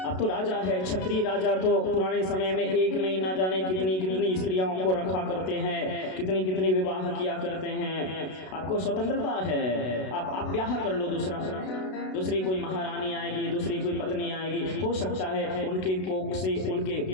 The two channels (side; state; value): right; late; 32 ms